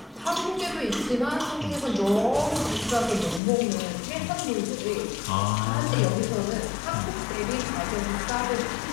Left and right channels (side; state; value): right; drops out; at 3.4 s